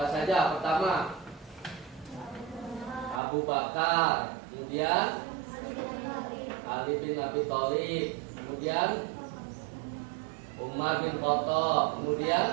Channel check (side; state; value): left; drops out; at 3.2 s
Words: saja? Pertama Abu Bakar, kemudian Ali bin Abi Thalib, kemudian Umar bin Khattab,